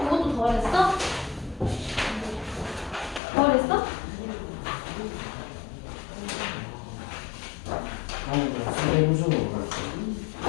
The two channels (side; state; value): right; drops out; at 3.2 s